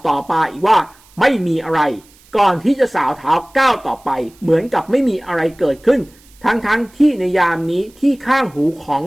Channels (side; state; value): right; noise; hiss, 28 dB below the sound